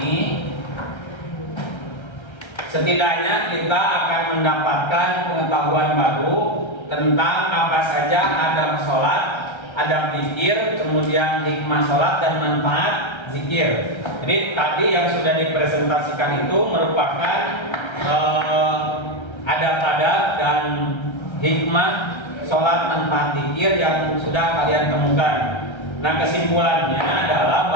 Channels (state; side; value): late; right; 1.3 ms